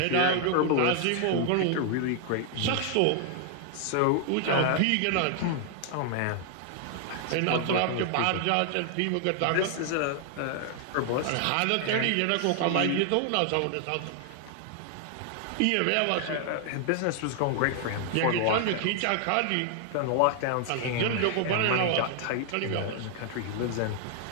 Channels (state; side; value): different; both; correlation 0.00